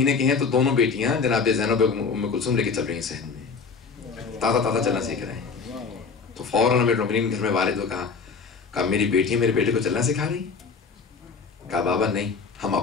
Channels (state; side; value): quieter; right; 5.2 dB